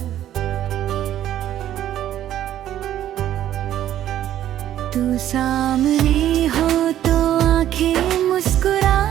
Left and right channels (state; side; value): quieter; left; 11.9 dB